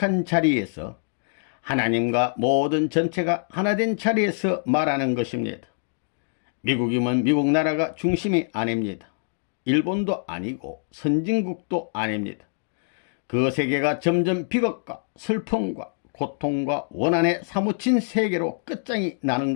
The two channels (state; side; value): silent; right; digital silence